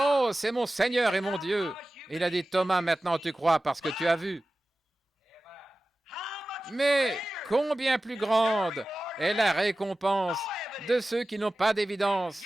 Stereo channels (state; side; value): normal; both; correlation 0.96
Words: c'est mon Seigneur et mon Dieu. Et il a dit, Thomas, maintenant tu crois parce que tu as vu. Mais combien plus grande est la récompense de ceux qui n'ont pas d'évidence,